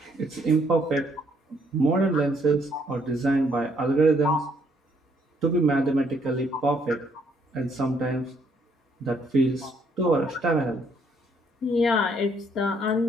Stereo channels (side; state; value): both; normal; correlation 0.68